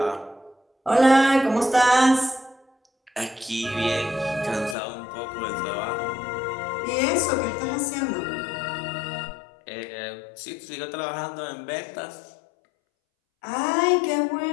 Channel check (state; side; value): drops out; right; at 4.8 s